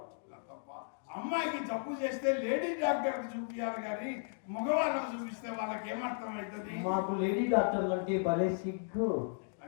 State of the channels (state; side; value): silent; right; digital silence